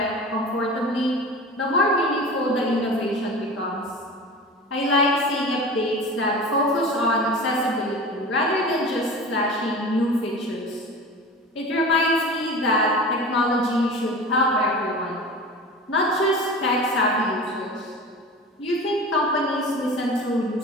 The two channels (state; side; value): normal; both; correlation 0.34